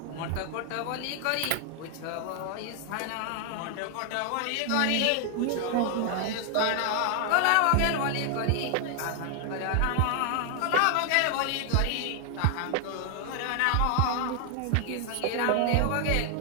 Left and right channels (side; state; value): both; different; correlation 0.00